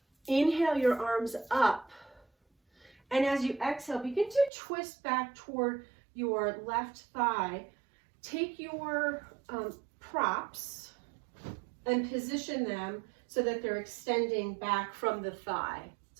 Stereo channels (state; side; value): drops out; left; at 4.5 s